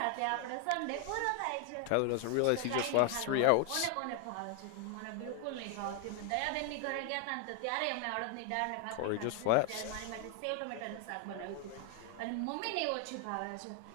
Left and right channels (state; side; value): different; both; correlation 0.01